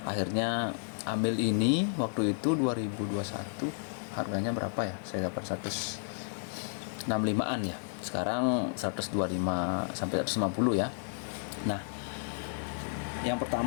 Akhirnya ambil ini waktu itu 2021. Harganya berapa ya? Saya dapat 165-an ya. Sekarang 125 sampai 150 ya. Nah, yang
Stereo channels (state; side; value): silent; right; digital silence